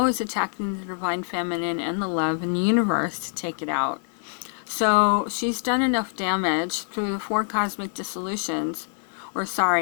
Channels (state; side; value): silent; right; digital silence